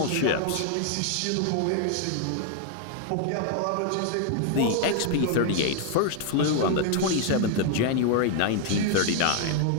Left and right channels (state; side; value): different; both; correlation 0.00